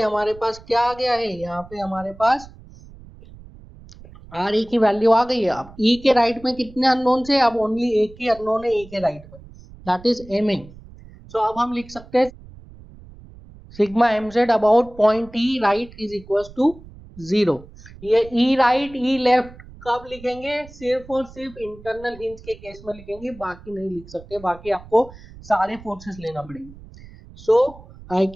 हमारे पास क्या आ गया है, यहाँ पे हमारे पास आर ए की वैल्यू आ गई है। अब ई के राइट में कितने अननोन से, अब ओनली एक ही अननोन है ई के राइट में, that is M A. So अब हम लिख सकते हैं sigma M Z about point E right is equal to 0। ये ई राइट ई लेफ्ट कब लिखेंगे, सिर्फ और सिर्फ इंटरनल हिंज के केस में लिखेंगे, बाकी नहीं लिख सकते, बाकी आपको सारे फोर्सेस लेना पड़ेंगे। सो I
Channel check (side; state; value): right; noise; rumble, 20 dB below the sound